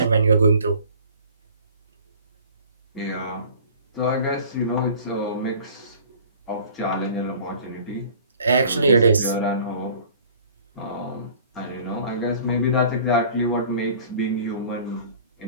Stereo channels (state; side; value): inverted; both; correlation -0.48